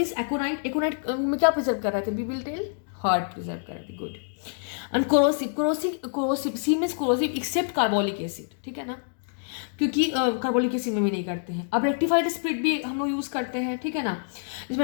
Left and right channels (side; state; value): right; silent; digital silence